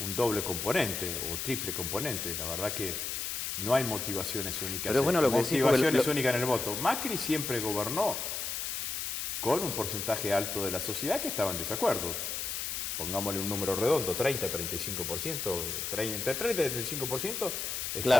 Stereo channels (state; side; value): noise; left; hiss, 3 dB below the sound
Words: doble componente o triple componente. La verdad que no hay motivaciones únicas. Pero bueno, motivaciones únicas en el voto. Macri siempre gobernó con un porcentaje alto de la sociedad que estaba en desacuerdo. Pongámosle un número redondo, 30-35%, entre 30 y 35%